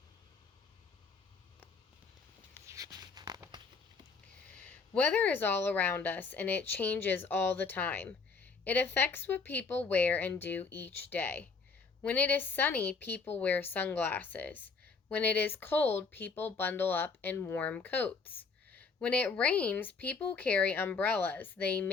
Weather is all around us, and it changes all the time. It affects what people wear and do each day. When it is sunny, people wear sunglasses. When it is cold, people bundle up in warm coats. When it rains, people carry umbrellas. They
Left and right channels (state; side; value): quieter; right; 4.8 dB